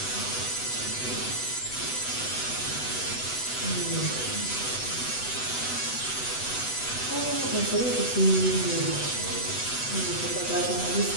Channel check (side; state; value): right; late; 8.0 ms